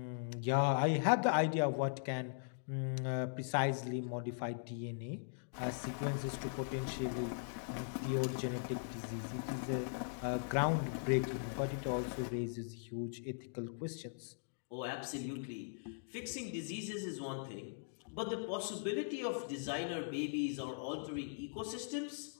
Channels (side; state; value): right; silent; digital silence